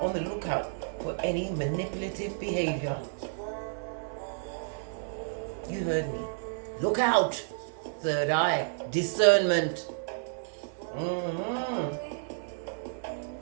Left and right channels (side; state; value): left; silent; digital silence